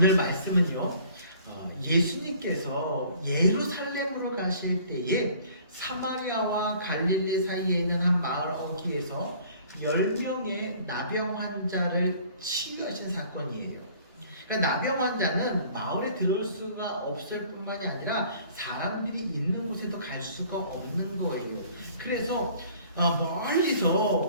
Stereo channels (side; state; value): both; inverted; correlation -0.53